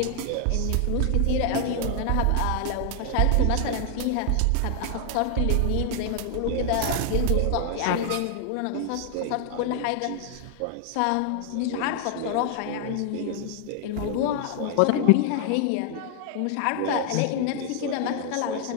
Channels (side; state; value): both; different; correlation 0.00